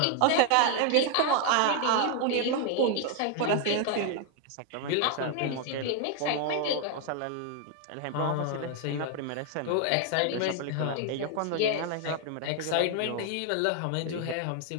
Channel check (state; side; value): different; both; correlation 0.00